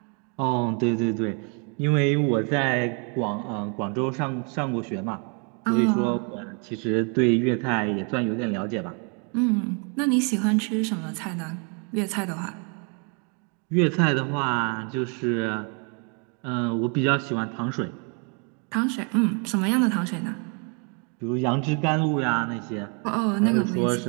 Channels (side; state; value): left; quieter; 36.8 dB